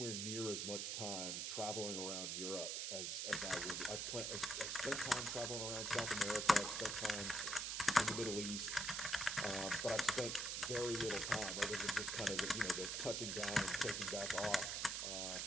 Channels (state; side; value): noise; right; hiss, 1 dB below the sound